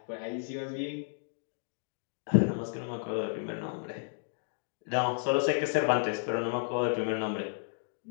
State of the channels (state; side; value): silent; right; digital silence